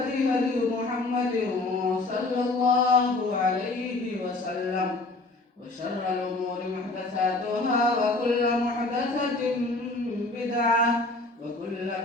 هدي محمد صلى الله عليه وسلم وشر الأمور محدثاتها وكل محدثة بدعة وكل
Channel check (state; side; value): quieter; right; 3.1 dB